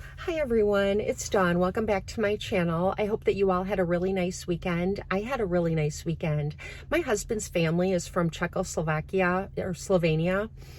Hi everyone, it's Dawn. Welcome back to my channel. I hope that you all had a really nice weekend. I had a really nice weekend. My husband's family is from Czechoslovakia or Slovenia,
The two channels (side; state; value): both; identical; correlation 1.00